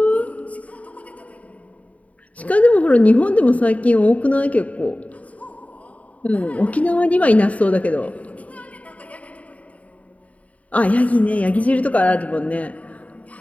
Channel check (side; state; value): right; late; 0.068 ms